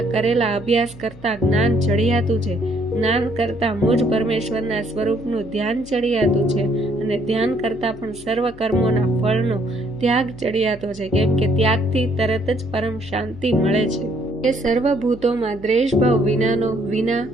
કરેલા અભ્યાસ કરતા જ્ઞાન ચડિયાતું છે. જ્ઞાન કરતા મુજ પરમેશ્વરના સ્વરૂપનું ધ્યાન ચડિયાતું છે અને ધ્યાન કરતા પણ સર્વ કર્મોના ફળનો ત્યાગ ચડિયાતો છે, કેમ કે ત્યાગથી તરત જ પરમ શાંતિ મળે છે. એ સર્વભૂતોમાં દ્વેષભાવ વિનાનો, વિના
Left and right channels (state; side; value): noise; left; hum, 21 dB below the sound